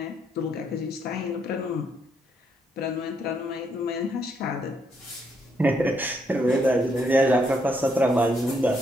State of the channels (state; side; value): normal; both; correlation 0.75